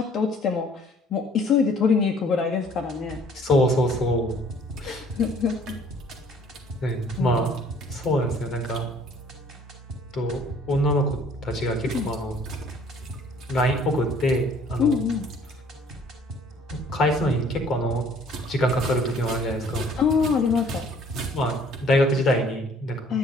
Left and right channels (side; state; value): both; normal; correlation 0.57